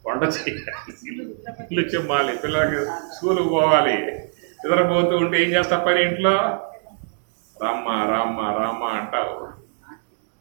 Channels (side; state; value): left; silent; digital silence